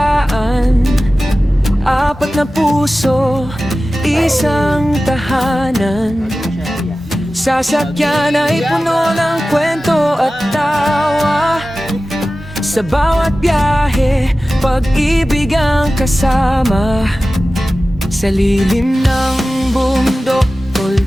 4 na puso, isang tahanan. sasakyan ay puno ng kwento at tawa. Sa bawat biyahe, pag-ibig ang kasama. Sa lilim ng bundok,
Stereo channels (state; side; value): normal; both; correlation 0.95